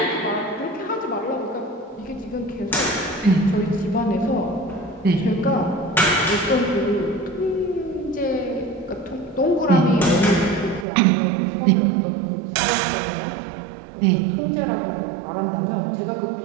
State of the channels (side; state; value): left; drops out; at 10.9 s